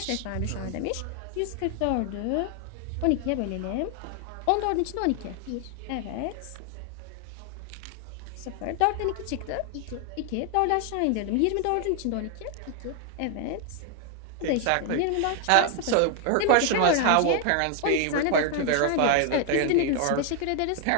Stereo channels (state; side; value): different; both; correlation 0.00